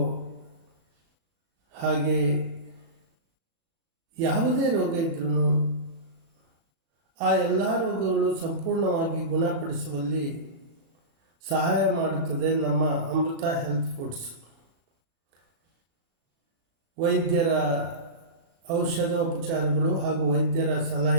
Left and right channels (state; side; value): late; left; 37 ms